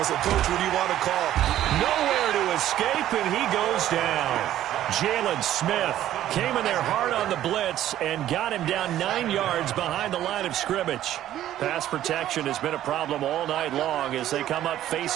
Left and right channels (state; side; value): quieter; left; 12.6 dB